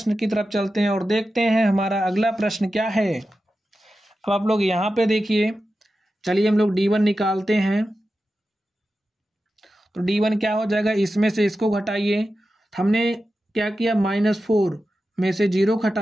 की तरफ चलते हैं और देखते हैं हमारा अगला प्रश्न क्या है। अब आप लोग यहाँ पे देखिए, चलिए हम लोग D1 निकालते हैं तो D1 क्या हो जाएगा, इसमें से इसको घटाइए। हमने क्या किया -4 में से 0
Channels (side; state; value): both; normal; correlation 0.92